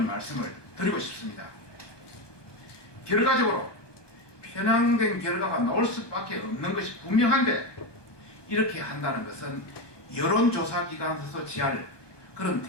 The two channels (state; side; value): late; right; 1.2 ms